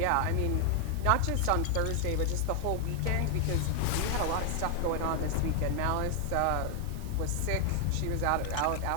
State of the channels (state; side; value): different; both; correlation 0.00